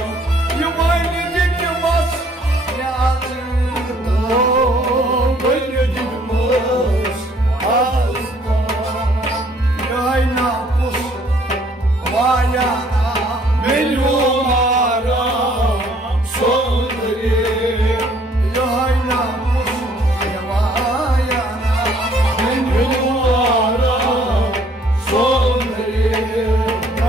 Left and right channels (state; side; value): normal; both; correlation 0.61